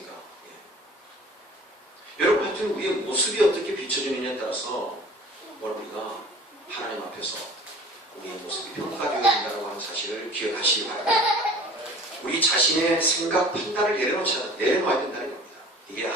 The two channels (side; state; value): both; normal; correlation 0.45